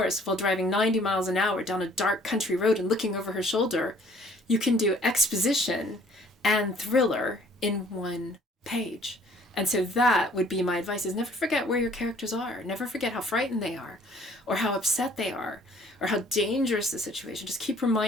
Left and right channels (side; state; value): both; normal; correlation 0.57